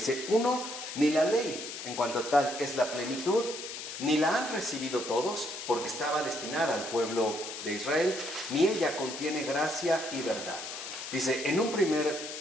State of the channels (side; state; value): left; noise; hiss, 8 dB below the sound